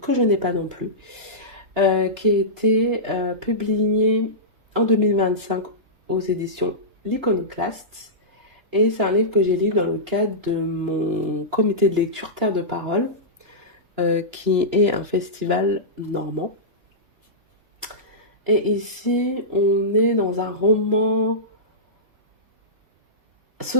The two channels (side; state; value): left; late; 2.9 ms